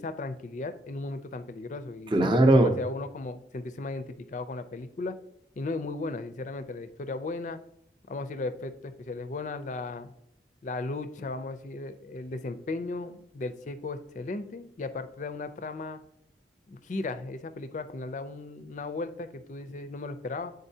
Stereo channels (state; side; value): normal; both; correlation 0.65